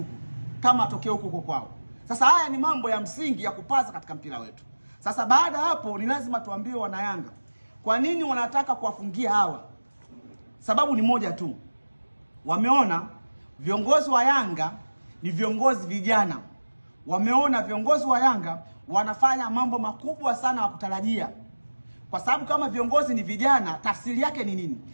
Kama atokea huko kwao. Sasa haya ni mambo ya msingi ya kupaza katika mpira wetu. Sasa baada hapo ni lazima tuambie wana Yanga kwa nini wanataka kuwafungia hawa. Sababu ni moja tu. Wameona viongozi wa Yanga ni viongozi vijana. Wameona viongozi wa Yanga wanafanya mambo makubwa sana wa kutarajia. Kwa sababu kama viongozi ni vijana, tafsiri yake ni nini?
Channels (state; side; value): inverted; both; correlation -1.00